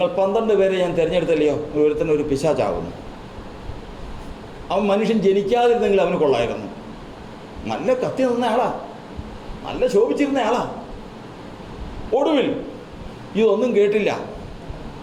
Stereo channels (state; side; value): identical; both; correlation 1.00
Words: 12 പേരെ ഞാൻ തിരഞ്ഞെടുത്തല്ലയോ, ഒരുത്തന്നെ ഒരു പിശാചാകുന്നു. അവൻ മനുഷ്യൻ ജനിക്കാതിരുന്നെങ്കിൽ അവന് കൊള്ളായിരുന്നു. നല്ല കത്തി നിന്ന ആളാ, നല്ല ശോഭിച്ചിരുന്ന ആളാ. ഒടുവിൽ ഇതൊന്നും കേട്ടില്ല.